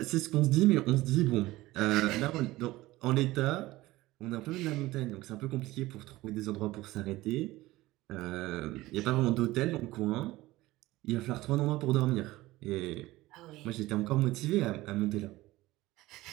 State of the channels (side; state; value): left; quieter; 18.2 dB